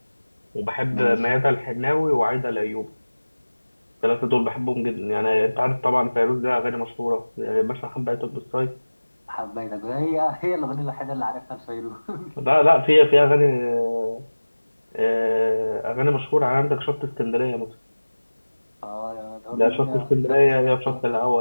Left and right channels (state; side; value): inverted; both; correlation -1.00